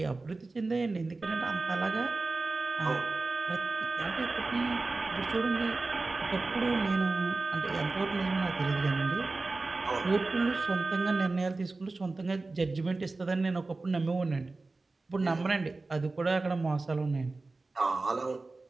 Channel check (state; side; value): quieter; left; 3.5 dB